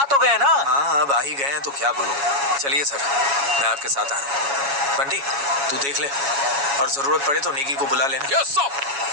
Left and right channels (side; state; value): left; late; 7.2 ms